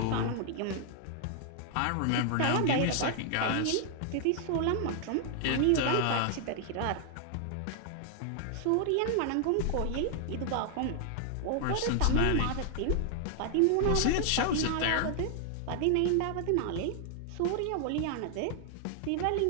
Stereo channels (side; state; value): both; different; correlation 0.00